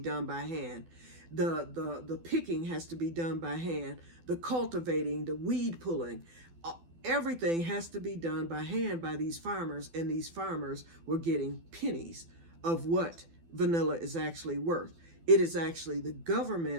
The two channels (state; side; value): late; left; 12 ms